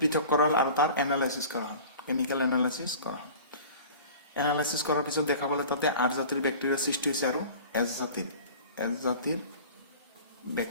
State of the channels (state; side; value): inverted; both; correlation -0.41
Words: করা আর তার অ্যানালাইসিস করা হয় কেমিক্যাল অ্যানালাইসিস করা হয় অ্যানালাইসিস করার পিছত দেখা পালে তাতে 8 জাতির ব্যাকটেরিয়া সৃষ্টি হয়েছে আর এছ জাতির